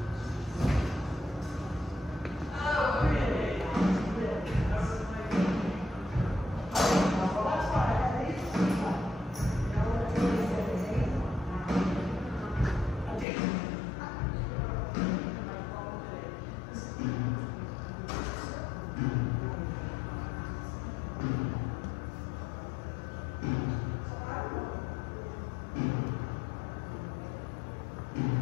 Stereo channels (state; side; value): drops out; right; at 13.2 s